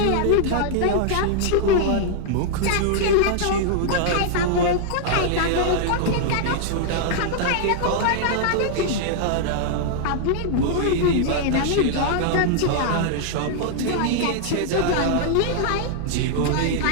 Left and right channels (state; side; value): different; both; correlation -0.01